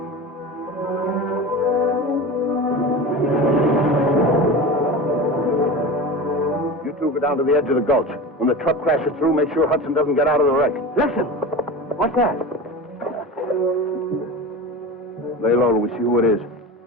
You two go down to the edge of the gulch. When the truck crashes through, make sure Hudson doesn't get out of the wreck. Listen! What's that? Lay low till we see who it is.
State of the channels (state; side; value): normal; both; correlation 0.30